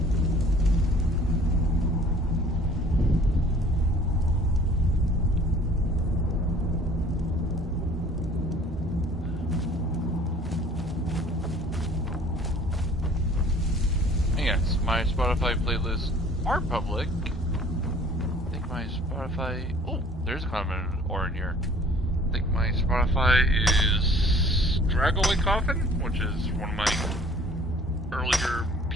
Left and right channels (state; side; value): normal; both; correlation 0.51